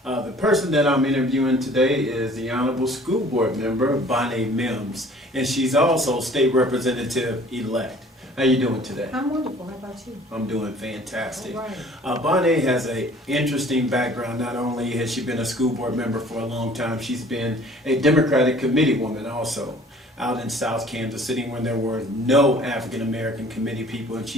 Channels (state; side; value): normal; both; correlation 0.52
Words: The person that I'm interviewing today is the Honorable School Board Member, Bonnaye Mims, and she's also State Representative-elect. How you doing today? I'm wonderful. How about you? I'm doing fantastic. All right. Bonnaye has an interesting background. Not only has she been a school board member for a long time, she's been a Democratic committee woman also out in South Kansas City when there were no African American committee people, and